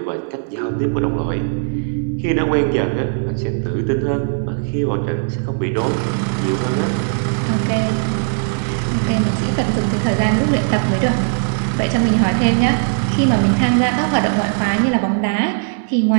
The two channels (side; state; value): left; silent; digital silence